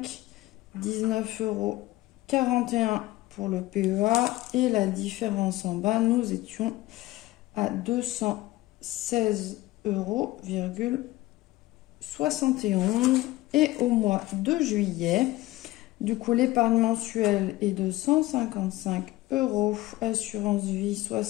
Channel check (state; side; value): quieter; right; 17.9 dB